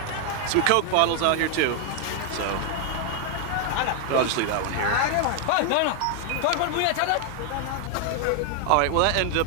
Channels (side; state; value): both; different; correlation 0.00